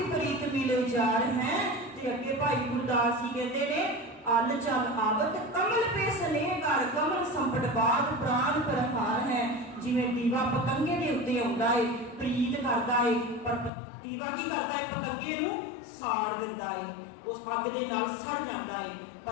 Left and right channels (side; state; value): right; drops out; at 13.7 s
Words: ਪ੍ਰੀਤ ਮਿਲੇ ਜਾਰ ਹੈ। ਤੇ ਅੱਗੇ ਭਾਈ ਗੁਰਦਾਸ ਜੀ ਕਹਿੰਦੇ ਨੇ ਅਲ ਚਲ ਆਵਤ ਕਮਲ ਪੇ ਸਨੇਹ ਕਰ ਕਮਲ ਸੰਪਟ ਬਾਦ ਪ੍ਰਾਨ ਪ੍ਰਹਾਰ ਹੈ। ਜਿਵੇਂ ਦੀਵਾ ਪਤੰਗੇ ਦੇ ਉੱਤੇ ਆਉਂਦਾ ਹੈ, ਪ੍ਰੀਤ ਕਰਦਾ ਹੈ, ਪਰ ਦੀਵਾ ਕੀ ਕਰਦਾ ਹੈ, ਪਤੰਗੇ ਨੂੰ ਸਾੜ ਦਿੰਦਾ ਹੈ, ਉਸ ਅੱਗ ਦੇ ਨਾਲ ਸੜ ਜਾਂਦਾ ਹੈ।